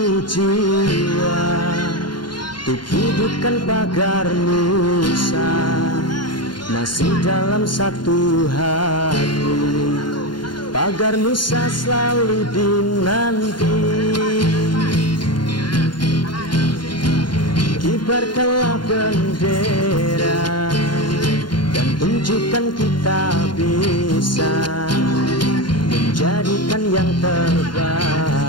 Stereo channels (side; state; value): right; late; 0.72 ms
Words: jiwa untuk hidupkan pagar Nusa, masih dalam satu hati. Pagar Nusa selalu dinanti. Kibarkanlah bendera dan tunjukkan kita bisa menjadikan yang